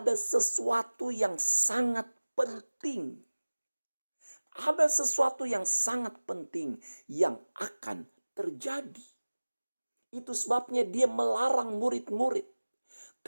sesuatu yang sangat penting. Ada sesuatu yang sangat penting yang akan terjadi. Itu sebabnya dia melarang murid-murid.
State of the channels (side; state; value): both; inverted; correlation -1.00